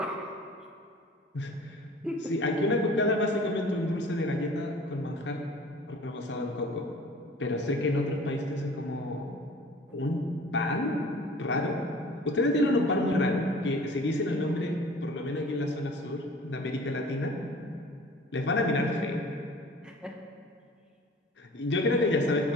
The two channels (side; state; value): both; normal; correlation 0.46